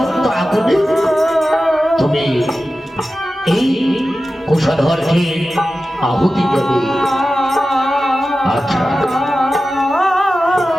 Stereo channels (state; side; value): normal; both; correlation 0.94